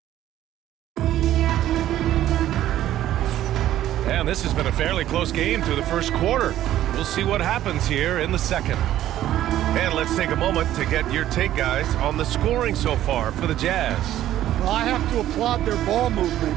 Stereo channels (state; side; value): quieter; left; 12.9 dB